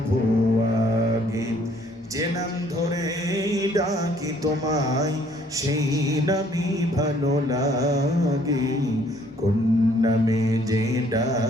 আগে। যে নাম ধরে ডাকি তোমায় সেই নামই ভালো লাগে, কোন নামে যে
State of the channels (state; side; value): normal; both; correlation 0.62